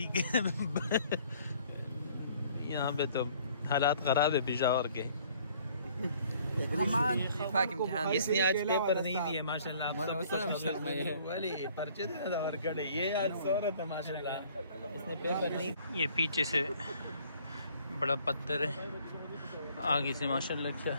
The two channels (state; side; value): inverted; both; correlation -0.58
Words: کے یہاں پہ تو حالات خراب ہے پشاور کے اس نے آج پیپر نہیں دیے ماشاء اللہ پرچے دینا اور کڑے یہ آج سورت ہے ماشاء اللہ اس نے پیپر نہیں. یہ پیچھے سے بڑا پتھر ہے آگے سے ماشاء اللہ کیا